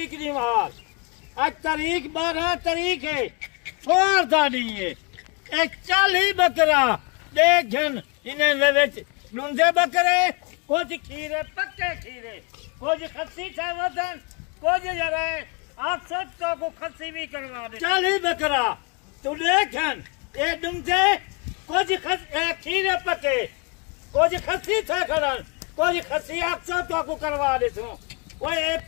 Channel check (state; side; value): quieter; right; 31.9 dB